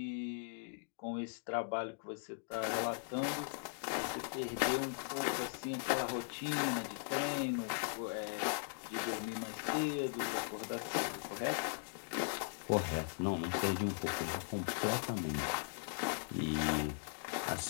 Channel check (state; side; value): silent; right; digital silence